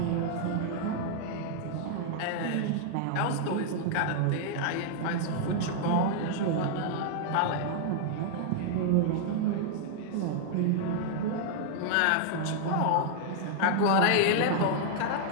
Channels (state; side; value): different; both; correlation -0.01